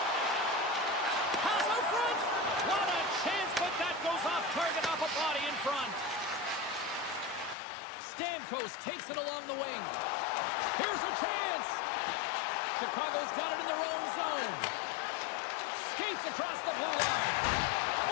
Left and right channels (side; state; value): right; drops out; at 7.6 s